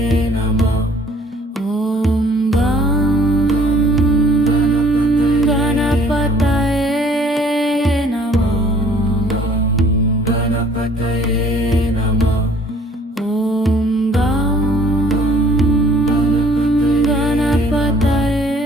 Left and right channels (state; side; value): normal; both; correlation 0.57